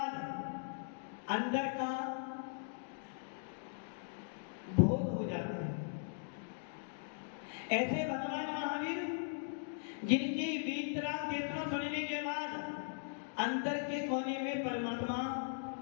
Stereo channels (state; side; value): silent; right; digital silence